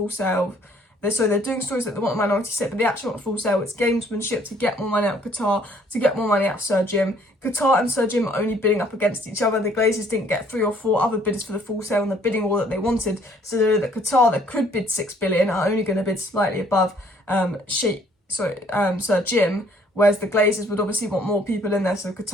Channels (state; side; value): normal; both; correlation 0.61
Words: sale. They're doing stories that they want a minority stake, but they actually want a full sale. It's gamesmanship to get more money out of Qatar, to get more money out of Sir Jim. Qatar and Sir Jim are only bidding up against each other. The Glazers didn't get 3 or 4 other bidders for the full sale in the bidding war that they wanted. So they know that Qatar, that could bid 6 billion, are only going to bid slightly above Sir Jim. Whereas the Glazers would obviously want more people in there, so